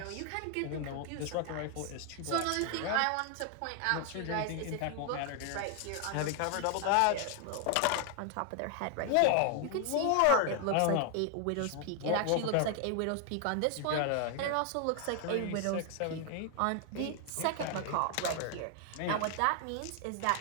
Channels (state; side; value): different; both; correlation 0.00